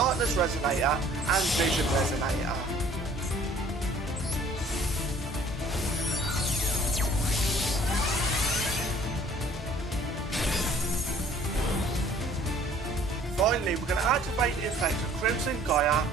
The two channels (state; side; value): normal; both; correlation 0.55